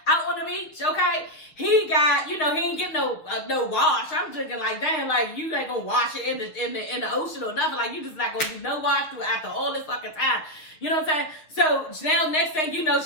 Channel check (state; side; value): late; right; 6.5 ms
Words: out on the beach, okay? He got, you know, he ain't getting no wash. I'm thinking like, damn, like you ain't gonna wash it in the ocean or nothing. Like you just not gonna do no wash through after all this fucking time. You know what I'm saying? So now next thing you know,